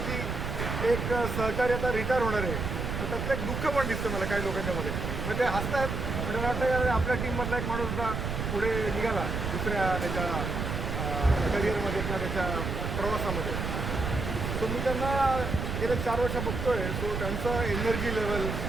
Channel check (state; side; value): noise; right; rumble, 3 dB below the sound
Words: की एक सहकारी आता रिटायर होणार आहे, तर त्यातलं एक दुःख पण दिसतं मला काही लोकांच्यामध्ये. मग ते हसतात म्हणजे मला वाटतं आपल्या टीममधला एक माणूस होता पुढे निघाला दुसऱ्या त्याच्या करिअरमध्ये किंवा त्याच्या प्रवासामध्ये. सो मी त्यांना गेले 4 वर्ष बघतोय. सो त्यांचं एनर्जी लेवल